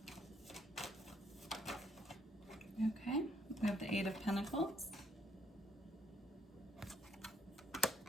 Okay, we have the Eight of Pentacles.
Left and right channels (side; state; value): both; normal; correlation 0.69